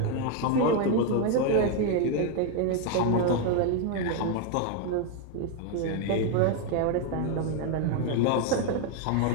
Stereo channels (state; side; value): different; both; correlation 0.01